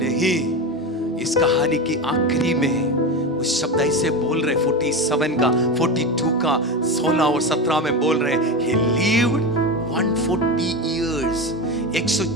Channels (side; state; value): both; normal; correlation 0.20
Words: इस कहानी की आखिरी में उस शब्द ऐसे बोल रहे 47 का 42 का 16 और 17 में बोल रहे he lived 140 years,